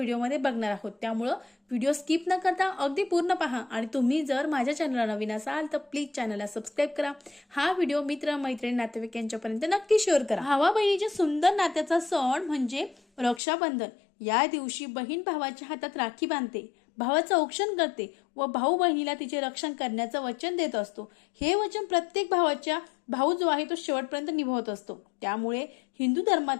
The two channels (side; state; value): right; drops out; at 13.4 s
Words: बघणार आहोत. त्यामुळं व्हिडिओ स्किप न करता अगदी पूर्ण पहा आणि तुम्ही जर माझ्या चॅनलला नवीन असाल तर प्लीज चॅनलला सबस्क्राईब करा. हा व्हिडिओ मित्र, मैत्रिणी, नातेवाईक यांच्यापर्यंत नक्की शेअर करा. भावा बहिणीच्या सुंदर नात्याचा सण म्हणजे रक्षाबंधन. या दिवशी बहीण भावाच्या हातात राखी बांधते, भावाचं औक्षण करते व भाऊ बहिणीला तिचे रक्षण करण्याचं वचन देत असतो. हे वचन प्रत्येक भावाच्या भाऊ जो आहे तो शेवटपर्यंत निभावत असतो. त्यामुळे हिंदू